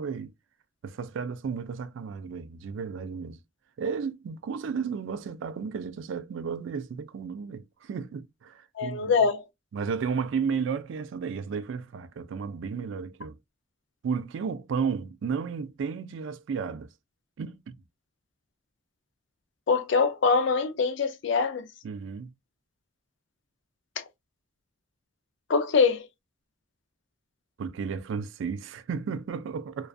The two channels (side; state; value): both; normal; correlation -0.07